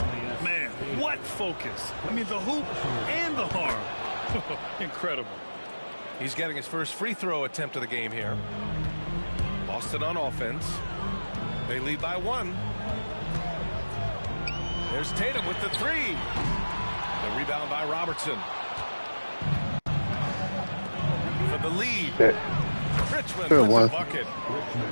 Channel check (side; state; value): both; inverted; correlation -1.00